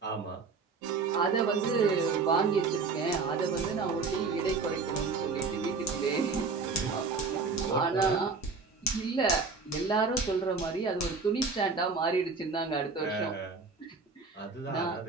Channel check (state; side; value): quieter; left; 4.5 dB